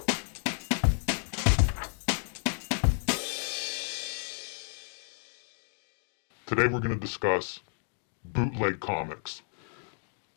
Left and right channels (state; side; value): silent; right; digital silence